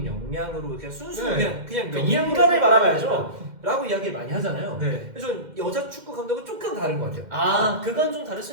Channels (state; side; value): late; left; 2.1 ms